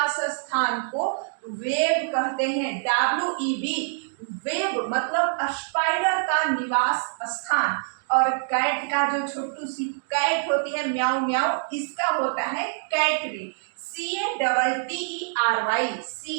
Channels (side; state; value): left; silent; digital silence